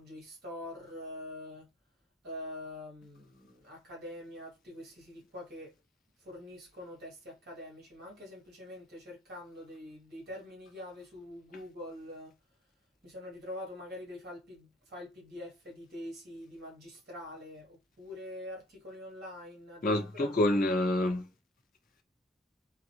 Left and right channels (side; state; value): both; normal; correlation 0.55